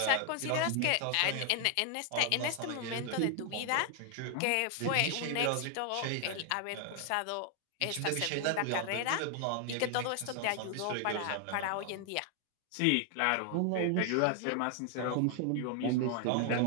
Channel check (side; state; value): both; different; correlation 0.00